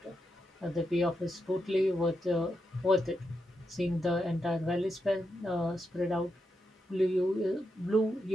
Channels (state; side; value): normal; both; correlation 0.85